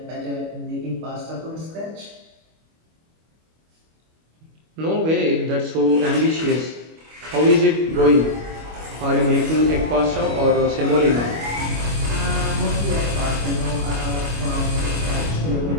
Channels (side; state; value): left; late; 25 ms